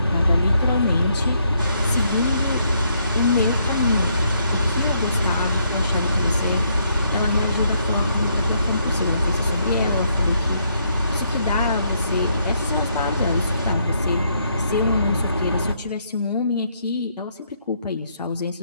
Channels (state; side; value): inverted; both; correlation -0.73